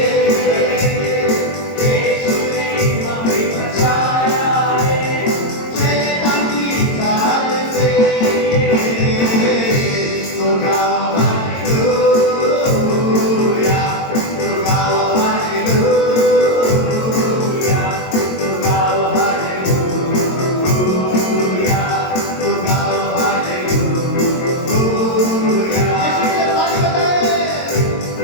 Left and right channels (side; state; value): right; late; 22 ms